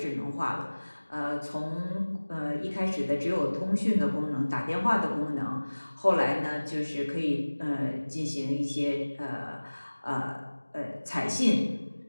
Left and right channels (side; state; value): both; inverted; correlation -1.00